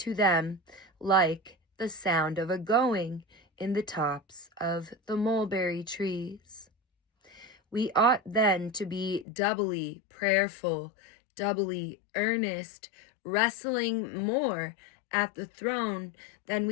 them like the sound of a going in the tops of the mulberry trees. We ought then to be doubly prayerful, doubly earnest, wrestling more at the throne than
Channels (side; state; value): right; drops out; at 9.2 s